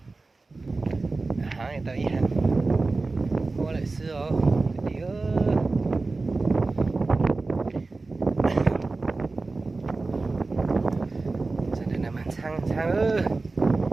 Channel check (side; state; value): left; quieter; 3.6 dB